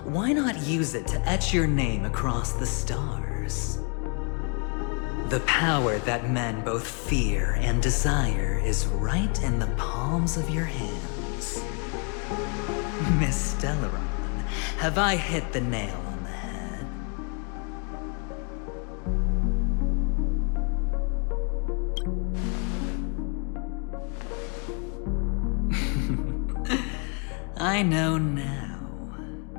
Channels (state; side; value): quieter; right; 38.7 dB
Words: Why not use it to etch your name across the stars? The power that men both fear and desire is right in the palms of your hands. Miss Stellaron, have I hit the nail on the head? I know now.